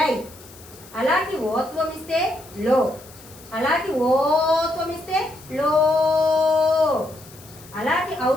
అలాకి ఓత్వం ఇస్తే లో. అలాకి ఓత్వం ఇస్తే లో. అలాకి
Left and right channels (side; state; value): left; noise; hiss, 21 dB below the sound